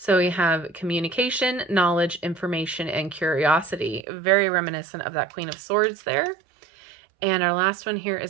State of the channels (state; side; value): drops out; left; at 4.0 s